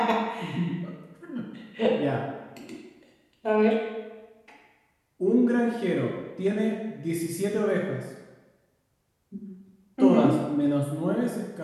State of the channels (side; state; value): both; identical; correlation 1.00